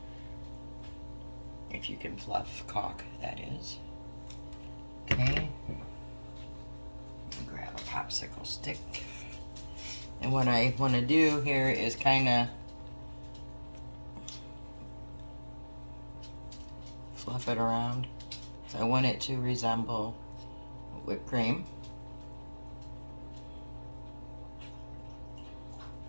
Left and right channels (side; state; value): both; inverted; correlation -1.00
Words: If you can fluff caulk, that is. Okay. Grab a popsicle stick. And what I want to do here is kind of fluff it around. So I want it to resemble whipped cream.